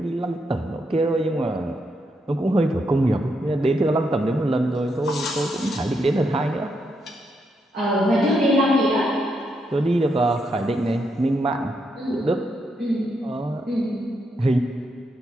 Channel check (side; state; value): both; normal; correlation 0.80